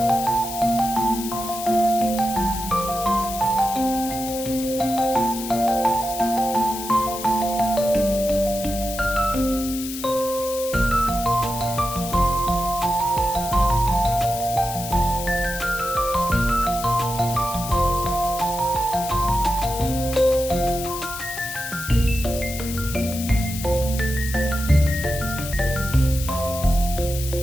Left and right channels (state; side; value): noise; left; hiss, 9 dB below the sound